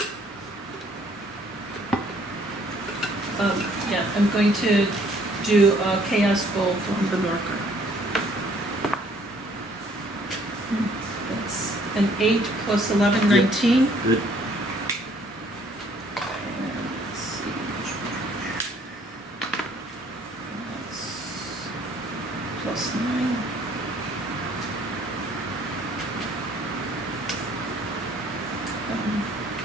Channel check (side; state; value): both; normal; correlation 0.61